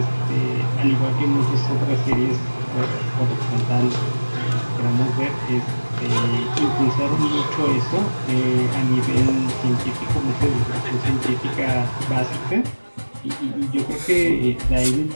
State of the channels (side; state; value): both; inverted; correlation -1.00